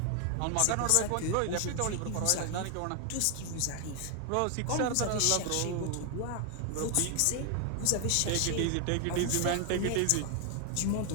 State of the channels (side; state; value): both; different; correlation 0.00